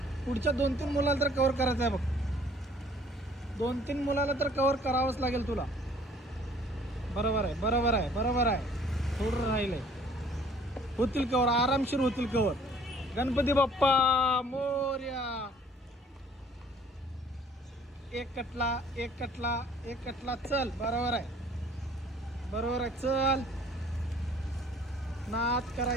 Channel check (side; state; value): both; normal; correlation 0.56